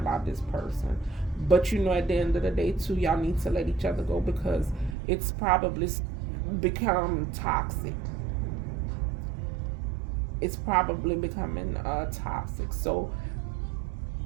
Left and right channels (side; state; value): left; drops out; at 5.0 s